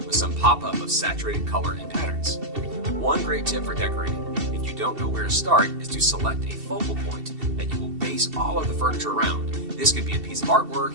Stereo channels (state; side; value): late; left; 2.7 ms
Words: with some pop-up of saturated color and patterns. One great tip for decorating, if you don't know where to start, is to select a focal point that you will base all of the furniture around. This could be a piece of